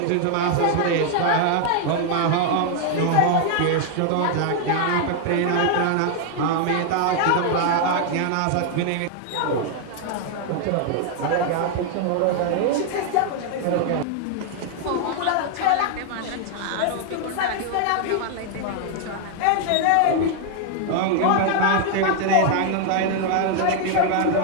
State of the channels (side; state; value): both; different; correlation 0.00